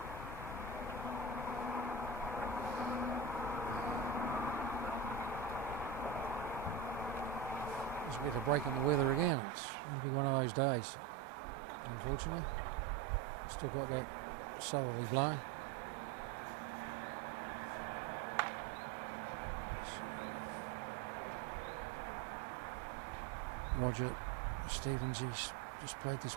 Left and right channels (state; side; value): drops out; left; at 9.3 s